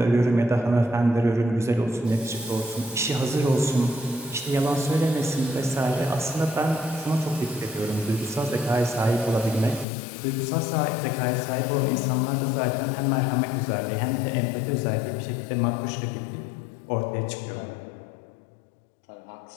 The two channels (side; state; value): right; drops out; at 9.9 s